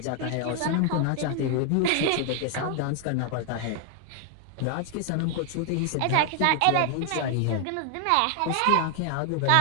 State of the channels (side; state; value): both; different; correlation 0.00